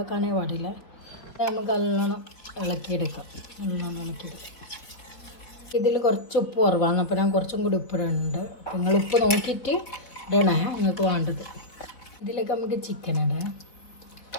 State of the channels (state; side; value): late; right; 4.3 ms